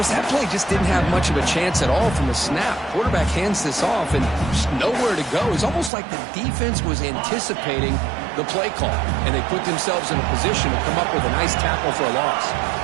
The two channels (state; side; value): drops out; left; at 5.9 s